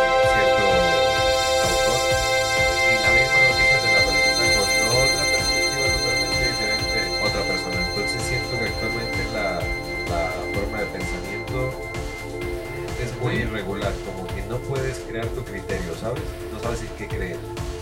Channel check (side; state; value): both; identical; correlation 1.00